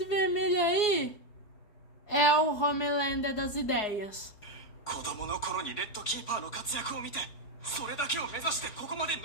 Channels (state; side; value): late; right; 4.8 ms